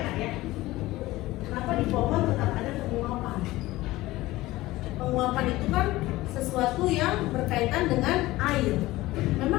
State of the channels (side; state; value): right; quieter; 18.1 dB